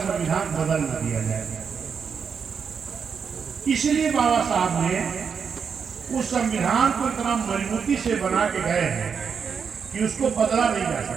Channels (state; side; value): quieter; left; 6.4 dB